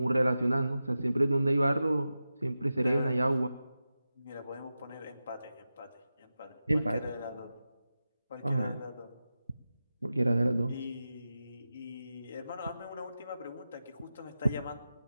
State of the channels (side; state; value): both; inverted; correlation -0.92